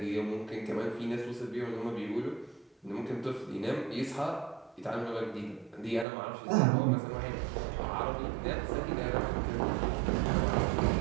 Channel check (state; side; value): drops out; left; at 6.1 s